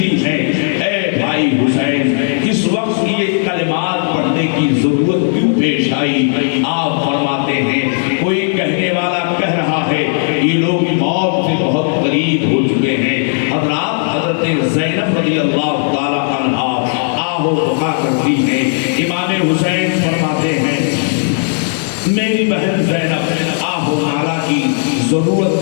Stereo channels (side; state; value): right; silent; 61 dB below the other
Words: ہیں اے بھائی حسین اس وقت یہ کلمات پڑھنے کی ضرورت کیوں پیش آئی؟ آپ فرماتے ہیں کوئی کہنے والا کہہ رہا ہے یہ لوگ موت سے بہت قریب ہو چکے ہیں. حضرات حضرت زینب رضی اللہ تعالیٰ عنہا آہو بکا کرتی ہیں. امام حسین فرماتے ہیں میری بہن زینب آہو نالا کی ضرورت